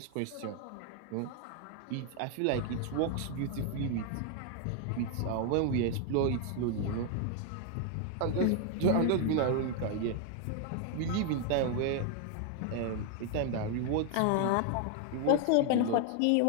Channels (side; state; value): both; different; correlation 0.00